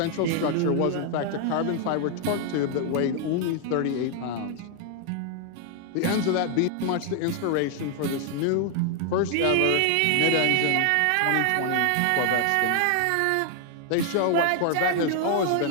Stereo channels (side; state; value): both; different; correlation 0.00